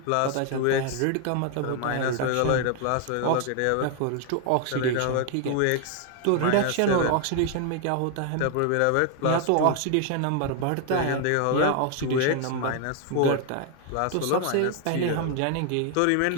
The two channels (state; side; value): different; both; correlation 0.00